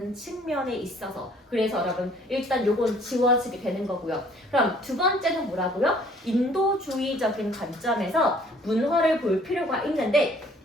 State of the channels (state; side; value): normal; both; correlation 0.58